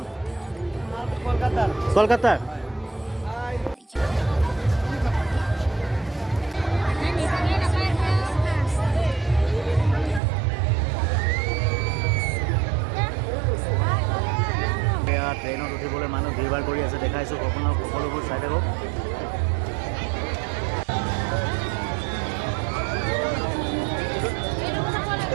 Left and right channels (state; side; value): drops out; left; at 10.2 s